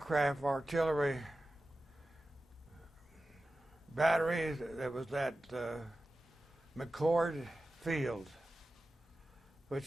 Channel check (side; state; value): both; normal; correlation 0.94